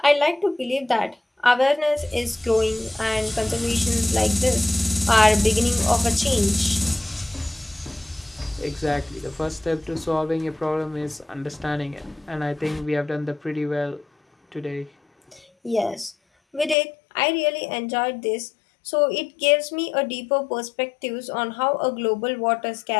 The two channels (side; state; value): right; drops out; at 16.8 s